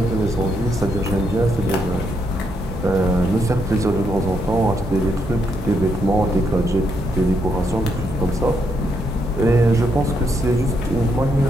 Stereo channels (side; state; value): both; normal; correlation 0.77